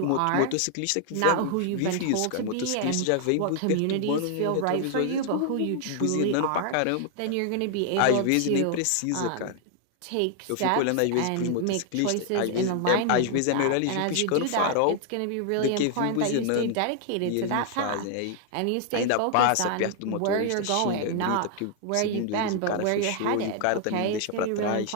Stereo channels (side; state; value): both; different; correlation 0.00